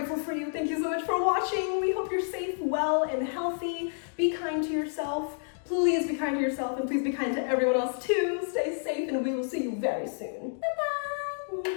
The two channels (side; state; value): right; silent; digital silence